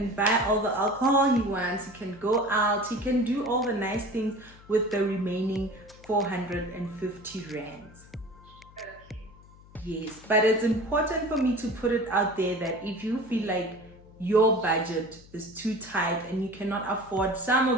buy all the alcohol he wants, he can go out, he can do all the nice things with the remaining 450 rands. Yes, but it's important for me to put it out there that if you feel like your budget is too tight and you cannot afford some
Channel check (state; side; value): noise; left; hum, 23 dB below the sound